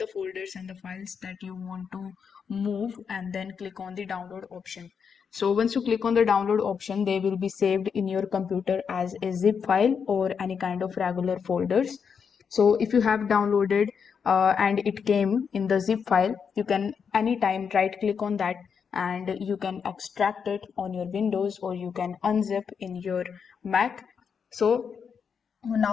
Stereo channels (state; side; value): quieter; right; 6.6 dB